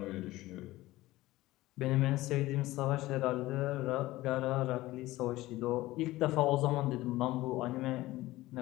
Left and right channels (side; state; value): right; quieter; 17.7 dB